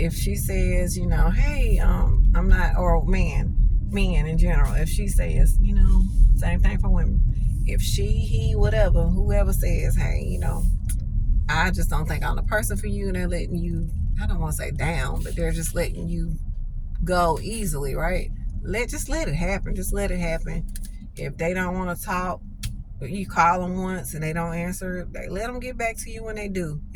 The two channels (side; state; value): both; identical; correlation 1.00